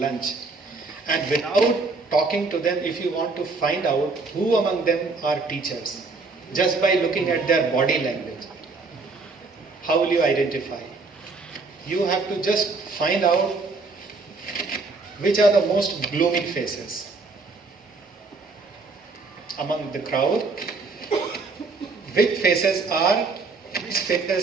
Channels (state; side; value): quieter; left; 3.9 dB